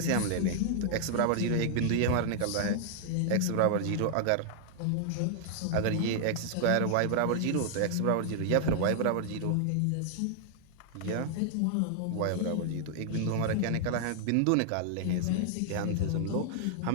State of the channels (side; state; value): both; different; correlation -0.01